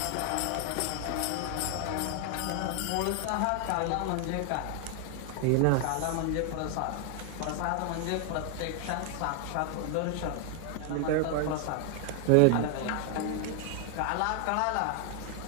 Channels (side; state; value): both; different; correlation 0.00